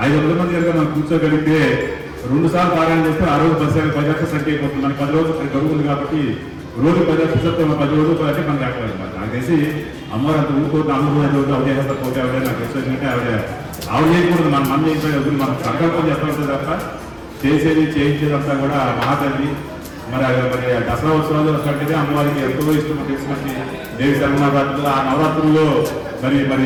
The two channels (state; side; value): identical; both; correlation 1.00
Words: 500 మంది కనుక మనం కూర్చోగలిగితే 2 సార్లు పారాయణ చేస్తే ఆ రోజు 10 లక్షల సంఖ్య అయిపోతుంది. మనకి 10 రోజులు గడువు ఉంది కాబట్టి రోజు 10 లక్షలు 10 రోజులు అంటే మనం రాకలేదన్నమాట. నాకు తెలిసి అమ్మవారు అంత ఊరుకోవద్దు అమ్మవారు అవదే అవదే నాకు తెలిసిందంటే ఆవిడ చేయకూడదు. మనం చేయించే మనం సంకల్పం చేస్తూ ఉంటుంది తప్ప చేయించేదంతా కూడా మహాతల్లి. మరి దసరా ఉత్సవాలు కంటే అమ్మవారికి ఎంతో ఇష్టం తెలిసినట్టు దేవి శర్మనవరాత్రులు ఆ నవరాత్రుల్లో మరి